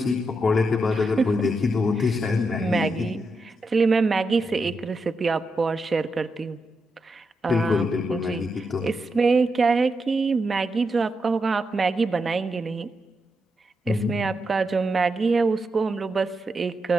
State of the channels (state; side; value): normal; both; correlation 0.85